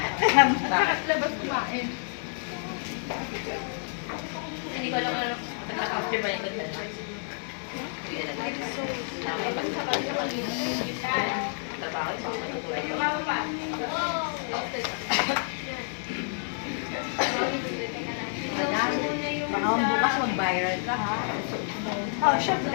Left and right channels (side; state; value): right; silent; 58 dB below the other